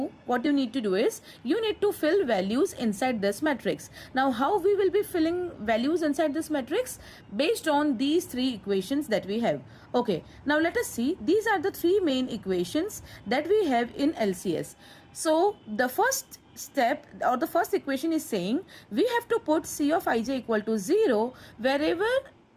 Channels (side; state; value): both; identical; correlation 1.00